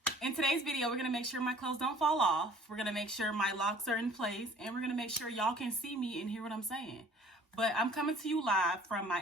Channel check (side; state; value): both; normal; correlation 0.52